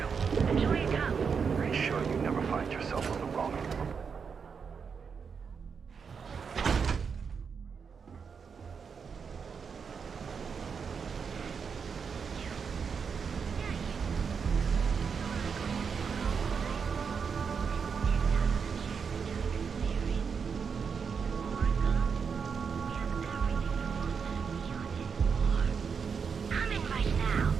Enjoy your cup. Are you sure you never find yourself on the wrong end of the... Coming right now.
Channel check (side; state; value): left; quieter; 6.1 dB